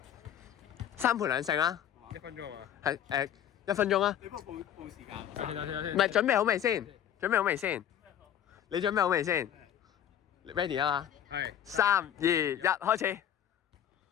3盤2勝啦。1分鐘啊嘛。係1分鐘啊。你幫我報時間。等先。唔係準備好未先？你準備好未先 ？Ready 啊嘛？係。3、2、1，開始。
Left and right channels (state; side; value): quieter; right; 10.2 dB